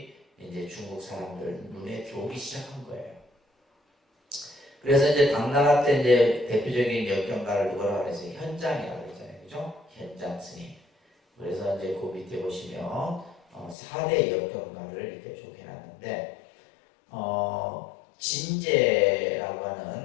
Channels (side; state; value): right; drops out; at 13.8 s